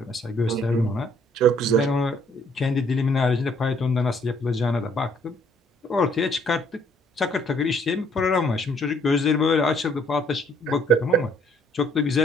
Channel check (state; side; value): normal; both; correlation 0.64